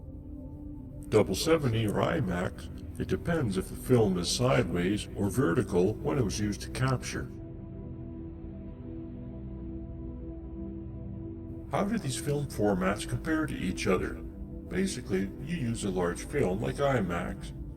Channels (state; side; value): identical; both; correlation 1.00